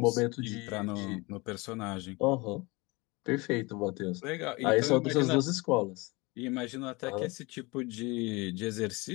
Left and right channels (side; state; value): right; quieter; 25.1 dB